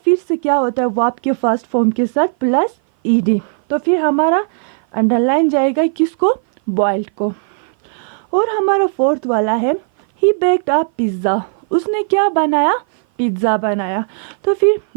से क्या होता है वर्ब के फर्स्ट फॉर्म के साथ प्लस ईडी, तो फिर हमारा अंडरलाइन जाएगा किसको, बॉइल्ड को। और हमारा फोर्थ वाला है ही बेक्ड अ पिज्ज़ा, उसने क्या बनाया, पिज्ज़ा बनाया। तो फिर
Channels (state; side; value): silent; left; 57 dB below the other